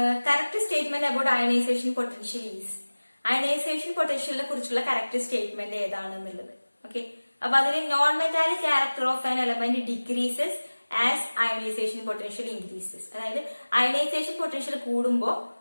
correct statement about ionisation potential is. Ionisation പൊട്ടൻഷ്യലിനെ കുറിച്ചുള്ള കറക്റ്റ് സ്റ്റേറ്റ്മെന്റ് ഏതാണെന്നുള്ളത്. ഓക്കെ, അപ്പൊ അതിൽ non metallic character of an element decreases as ionisation potential increases. അതായത് അയണൈസേഷൻ പൊട്ടൻഷ്യൽ കൂടുമ്പോ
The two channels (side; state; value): both; inverted; correlation -1.00